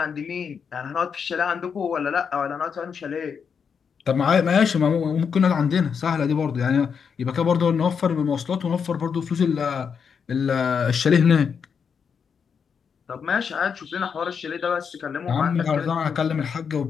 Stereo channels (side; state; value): right; quieter; 6.5 dB